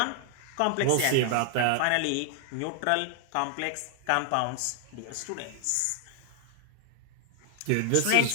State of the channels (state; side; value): different; both; correlation 0.00